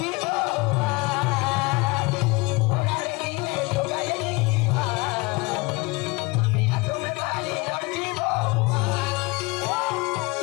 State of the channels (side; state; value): right; quieter; 25.3 dB